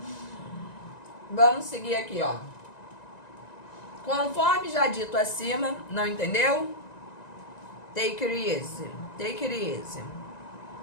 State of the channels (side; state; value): right; late; 1.9 ms